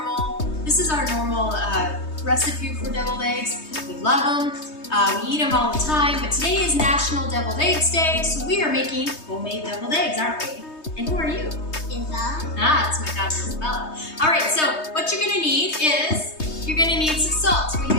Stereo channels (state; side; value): late; right; 3.2 ms